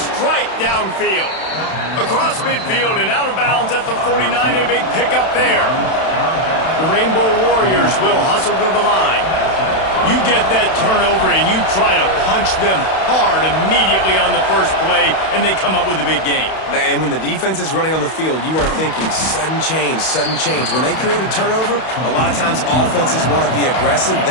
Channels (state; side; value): late; right; 31 ms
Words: downfield. Across midfield and out of bounds at the 49. A big pickup there. The Rainbow Warriors will hustle to the line. You get that turnover and you try to punch them hard immediately on the first play, and they come up with a big gain. And when the defense is running on the field, you are thinking sudden change, sudden change. When they create a turnover, a lot of times offenses want to be aggressive.